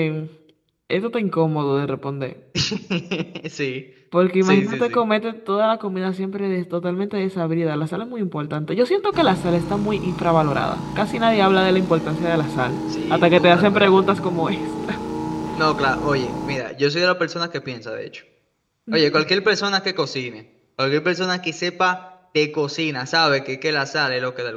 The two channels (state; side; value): identical; both; correlation 1.00